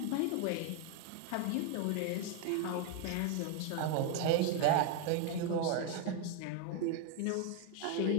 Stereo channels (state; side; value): different; both; correlation 0.01